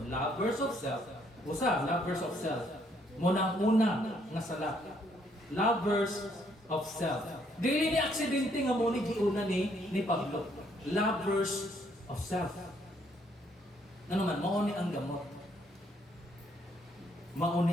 Lovers of self, usa, lovers of self. Munang-una nga sala. Lovers of self. Dili ni aksidente nga mo ni giuna ni Pablo. Lovers of self. Ano man, mauni ang gamot.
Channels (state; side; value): normal; both; correlation 0.69